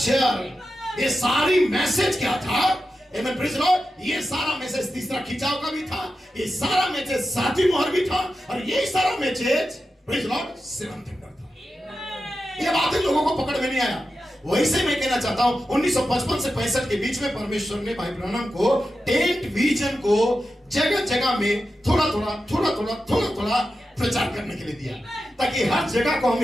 ये सारी मैसेज क्या था, आमीन, प्रेज़ द लॉर्ड। ये सारा मैसेज तीसरा खिंचाव का भी था, ये सारा मैसेज 7वीं मोहर भी था, और ये सारा message praise the Lord 7th thunder था। ये बातें लोगों को पकड़ में नहीं आया। वैसे मैं कहना चाहता हूं, 1955 से 65 के बीच में परमेश्वर ने भाई ब्रैनम को टेंट विजन को जगह जगह में थोड़ा थोड़ा प्रचार करने के लिए दिया, ताकि हर जगह को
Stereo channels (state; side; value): normal; both; correlation 0.91